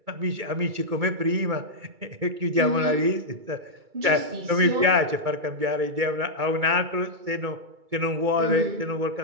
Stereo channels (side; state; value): left; late; 2.3 ms